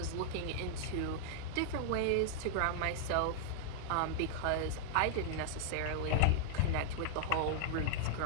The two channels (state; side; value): different; both; correlation 0.00